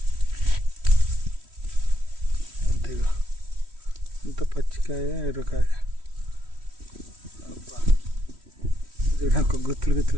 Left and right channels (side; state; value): left; late; 3.1 ms